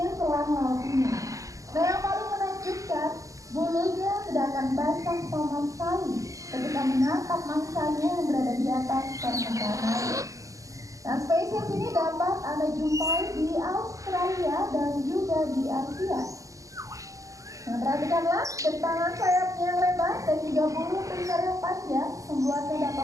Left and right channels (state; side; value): late; left; 0.16 ms